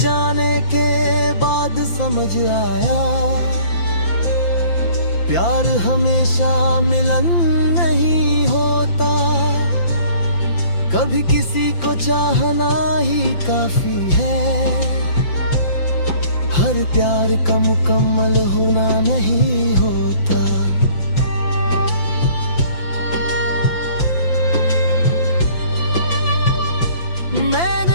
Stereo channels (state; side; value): late; right; 5.8 ms